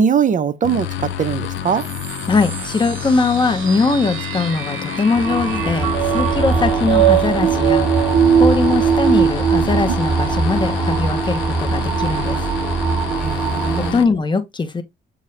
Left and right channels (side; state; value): both; normal; correlation 0.60